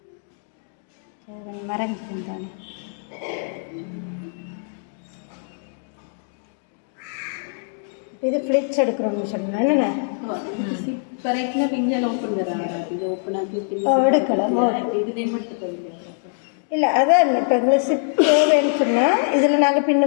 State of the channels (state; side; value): silent; right; 63 dB below the other